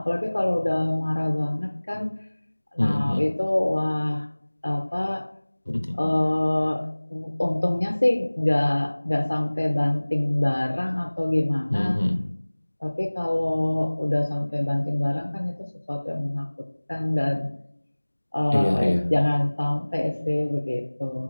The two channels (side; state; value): both; inverted; correlation -1.00